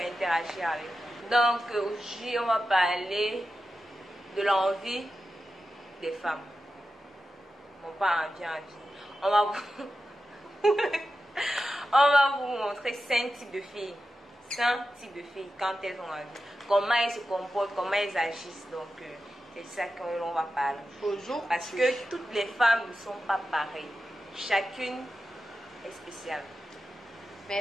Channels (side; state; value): both; normal; correlation 0.92